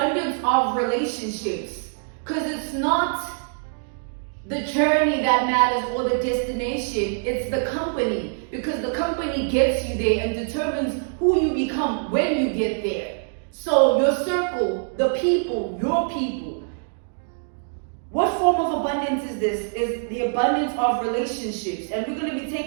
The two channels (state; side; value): silent; left; digital silence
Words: of relationships. Because it's not the journey that matters or the destination, it's the company. Because the company gets you there and determines who you become when you get there. So your circle, the people, your people. What form of abundance is this? Is the abundance of relationships. And we're going to be